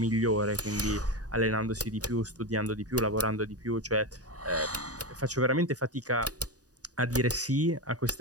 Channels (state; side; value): late; left; 0.67 ms